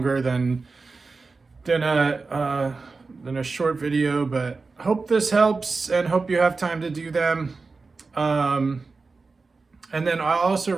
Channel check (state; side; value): quieter; left; 4.1 dB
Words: than a short video, but hope this helps and hope you have time to do them. And then I'll also